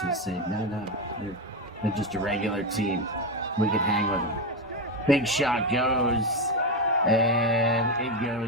say, no, they're just a regular team. We can hang with them. Big shot goes, and it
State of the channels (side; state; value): both; normal; correlation 0.12